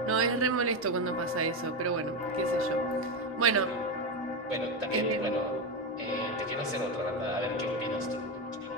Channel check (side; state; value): both; normal; correlation 0.12